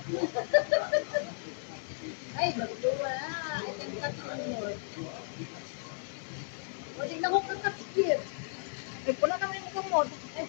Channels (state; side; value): silent; right; digital silence